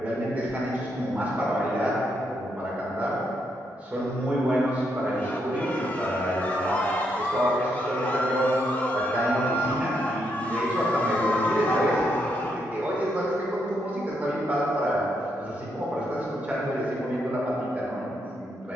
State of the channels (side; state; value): both; normal; correlation 0.78